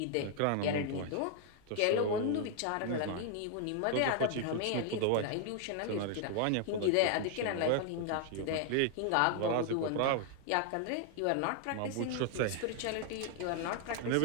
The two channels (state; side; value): different; both; correlation 0.00